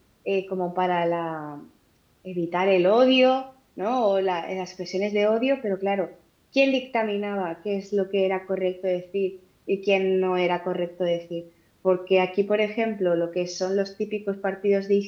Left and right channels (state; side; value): identical; both; correlation 1.00